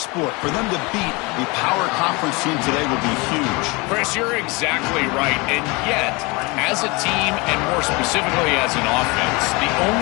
For them to beat a power conference team today would be huge. Chris, you're exactly right. And yet, as a team, and more specifically as an offense, the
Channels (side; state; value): right; quieter; 26.3 dB